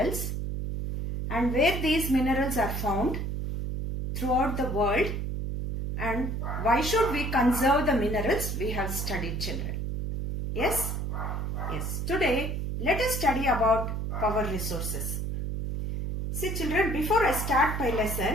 and where these minerals are found throughout the world, and why should we conserve the minerals we have studied, children. Yes? Yes. Today, let us study about power resources. See, children, before I start my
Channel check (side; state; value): right; noise; hum, 3 dB below the sound